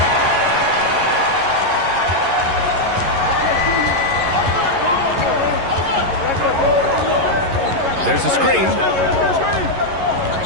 There's a screen.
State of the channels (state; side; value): late; left; 11 ms